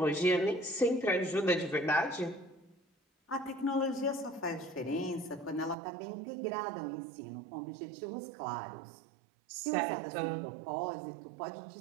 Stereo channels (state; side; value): drops out; left; at 5.8 s